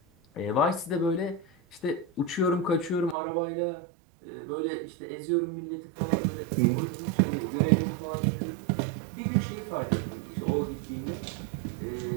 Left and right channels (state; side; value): drops out; left; at 3.2 s